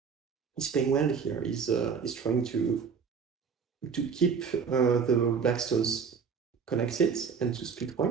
is playing well here. Is trying to keep the black stones connected and to split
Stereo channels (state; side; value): quieter; left; 6.2 dB